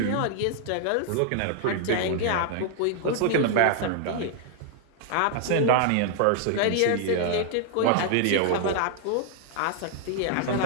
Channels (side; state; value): both; different; correlation 0.00